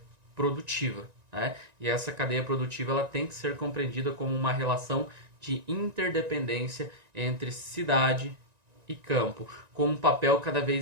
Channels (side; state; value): left; late; 1.9 ms